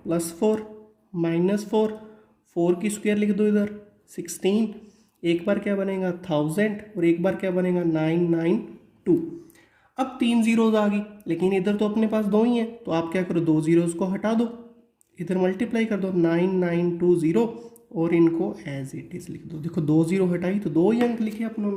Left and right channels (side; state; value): both; identical; correlation 1.00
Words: +4 -4, 4 की स्क्वायर लिख दो इधर 16। एक बार क्या बनेगा 1000 और एक बार क्या बनेगा 992। अब 3 जीरोज आ गई, लेकिन इधर तो अपने पास 2 ही हैं, तो आप क्या करो, 2 जीरोज को हटा दो, इधर मल्टीप्लाई कर दो 9920 और इनको एज इट इज लिख दो। देखो 2 जीरो हटाई तो 2 ही अंक लिखे अपनों